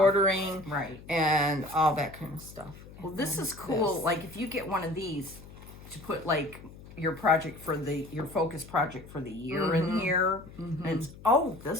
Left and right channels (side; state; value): left; noise; hum, 18 dB below the sound